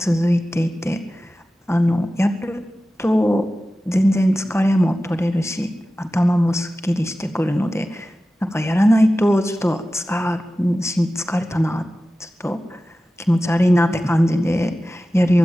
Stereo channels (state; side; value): normal; both; correlation 0.95